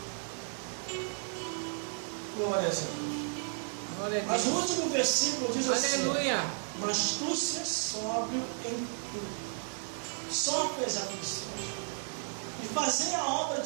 Glória a Deus. Glória a Mas Deus. o último versículo diz assim: Aleluia. mas tu se sóbrio em tudo. Sofre as aflições. E fazer a obra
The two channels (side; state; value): left; silent; 56 dB below the other